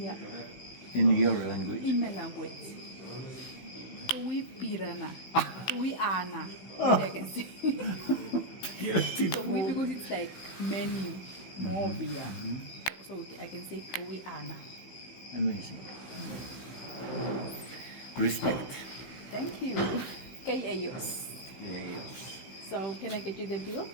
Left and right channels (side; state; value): right; late; 16 ms